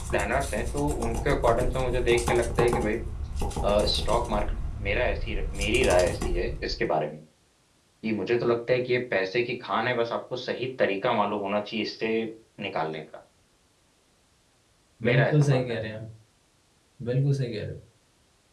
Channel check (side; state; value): both; identical; correlation 1.00